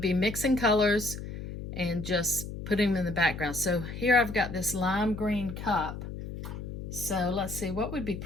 mixing colors and just putting them in the background. So here I've got this lime green cup. So let's see, what would be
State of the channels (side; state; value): left; noise; hum, 8 dB below the sound